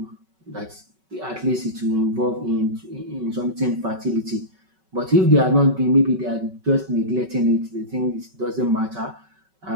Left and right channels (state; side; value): late; left; 5.3 ms